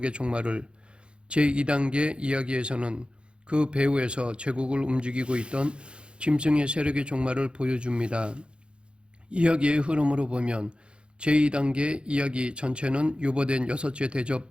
종말을, 제2단계 이야기에서는 그 배후에서 제국을 움직이고 있던 짐승의 세력의 종말을 보여줍니다. 이야기의 흐름으로 보면 제2단계 이야기 전체는 유보된 여섯째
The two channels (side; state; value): left; late; 0.056 ms